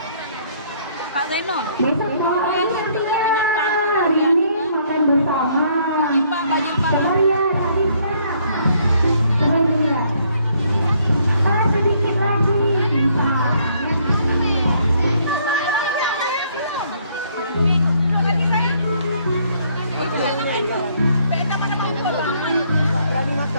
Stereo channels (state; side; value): inverted; both; correlation -0.66